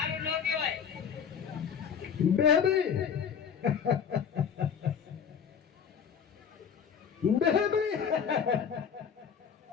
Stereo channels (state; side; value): quieter; right; 7.3 dB